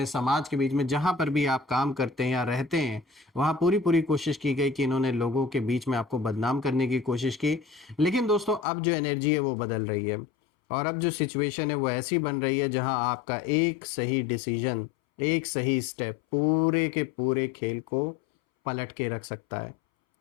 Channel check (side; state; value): right; drops out; at 8.7 s